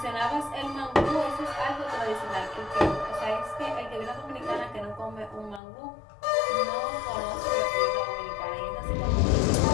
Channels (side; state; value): right; drops out; at 5.6 s